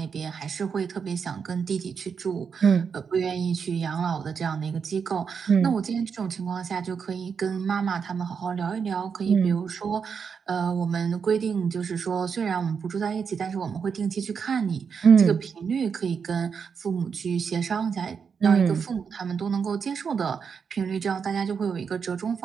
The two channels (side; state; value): left; quieter; 6.3 dB